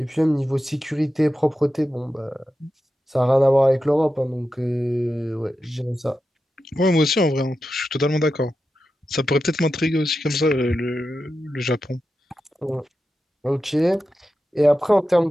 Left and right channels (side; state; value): both; normal; correlation 0.91